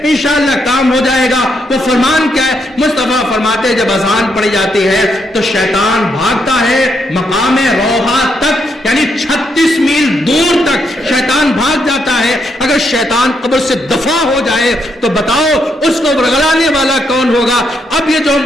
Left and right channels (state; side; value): normal; both; correlation 0.77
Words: انشاءاللہ کام ہو جائے گا. وہ فرمان کیا ہے؟ مصطفیٰ فرماتے جب اذان پڑھی جاتی ہے تو شیطان بھاگتا ہے مقام روحا تک, یعنی 36 میل دور تک شیطان بھاگ جاتا ہے. اگر شیطان قبر سے دفع ہو جائے تو بتاؤ اس کو ورگلانے والا کون ہوگا؟ اب یہ جو